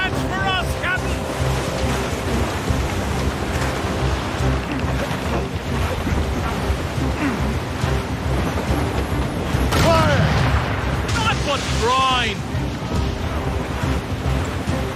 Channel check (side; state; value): both; identical; correlation 1.00